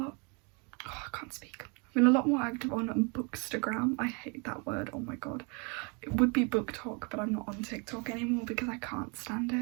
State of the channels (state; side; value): quieter; left; 33.1 dB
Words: can't speak. I've been a lot more active on Bookstagram. I hate that word, oh my god. It would be BookTok, but I'm not on TikTok anymore because I can't stand